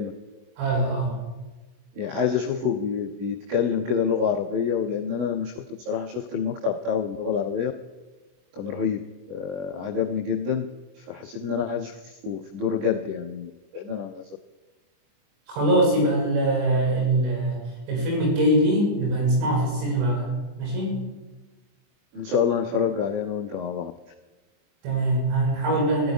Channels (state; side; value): late; left; 24 ms